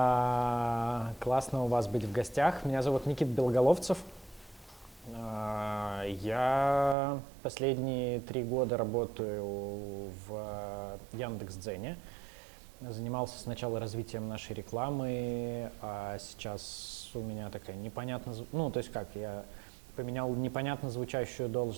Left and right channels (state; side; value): drops out; left; at 7.0 s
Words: Классно у вас быть в гостях. Меня зовут Никита Белоголовцев. Я последние 3 года работаю в Яндекс.Дзене. Занимался сначала развитием нашей рекламы, а сейчас у меня такая непонятно... я поменял непонятно звучащую